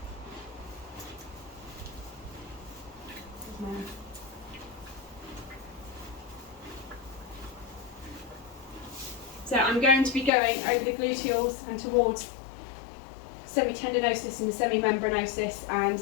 So I'm going to be going over the gluteals and towards semi-tendinosis and the semi-membranosis and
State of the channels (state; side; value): drops out; right; at 10.3 s